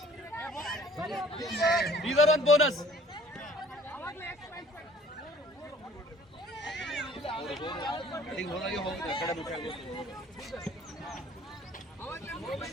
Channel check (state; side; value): normal; both; correlation 0.53